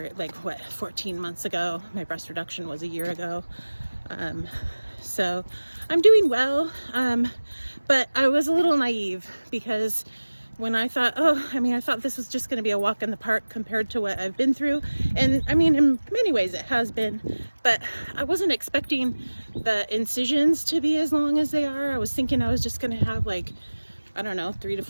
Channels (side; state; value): both; inverted; correlation -1.00